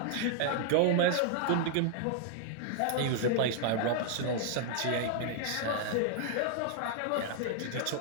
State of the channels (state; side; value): different; both; correlation -0.01